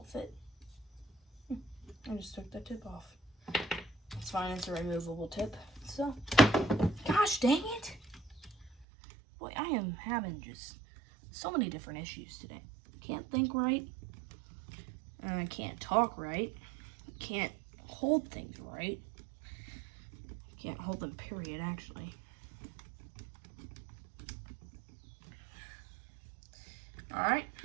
fit. I just took the tip off. It's fine, it's a removable tip. So, gosh dang it. Boy, I am having just so many different issues today. Can't think right. And I can't talk right. Can't hold things right. Can't hold them, period, actually. Alright,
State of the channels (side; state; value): left; drops out; at 8.8 s